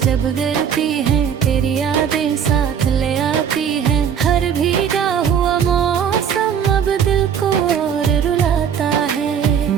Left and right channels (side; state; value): left; quieter; 8.0 dB